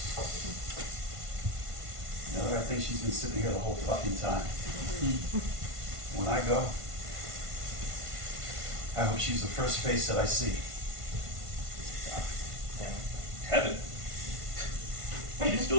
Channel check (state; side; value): late; left; 1.5 ms